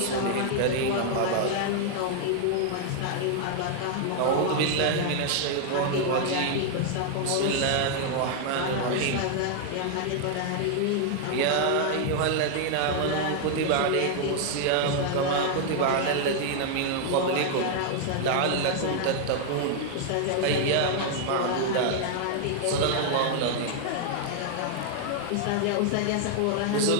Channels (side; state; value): both; different; correlation 0.00